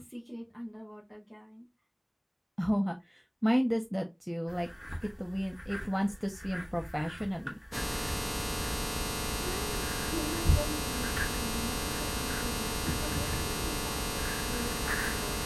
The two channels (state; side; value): identical; both; correlation 1.00